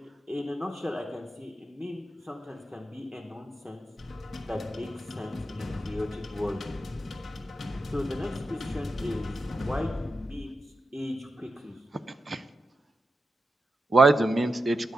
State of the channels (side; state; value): both; normal; correlation 0.89